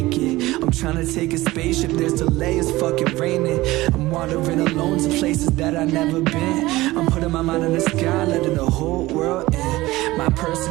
it. I'm trying to take a spaceship, there's delay, it's fucking raining. I'm wandering alone to places that I've never been. I'm putting my mind in the sky, letting the whole world in. My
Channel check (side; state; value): left; quieter; 18.6 dB